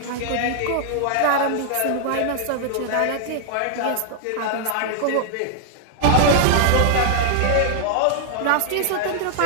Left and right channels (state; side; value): different; both; correlation 0.00